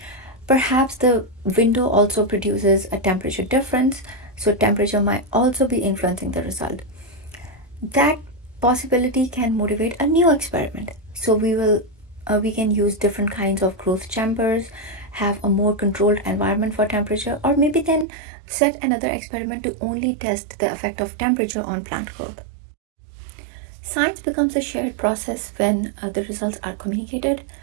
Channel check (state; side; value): drops out; left; at 18.1 s